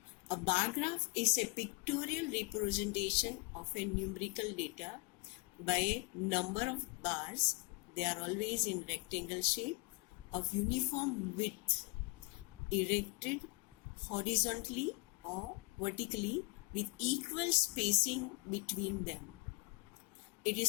A bar graph is a pictorial representation of a numerical data by a number of bars. They are always in rectangle shape of uniform width, erected horizontally or vertically with equal spacing between them. It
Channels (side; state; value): right; quieter; 28.8 dB